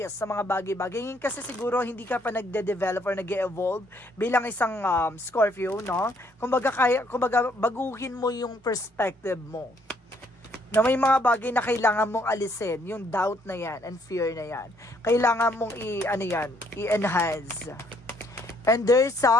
sa mga bagay-bagay. Ngayon kasi siguro hindi ka pa nagde-develop or nag-evolve bilang isang Scorpio, no? Kumbaga baguhin mo yung perspective mo. Na may mga bagay na kailangan mong alisin, yung doubt na yan and fear na yan. Kailangan mong i-enhance. And there's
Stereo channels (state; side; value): normal; both; correlation 0.68